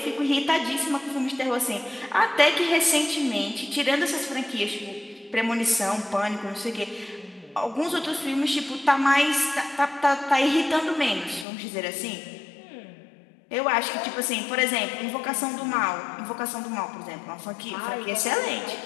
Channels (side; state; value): right; drops out; at 11.5 s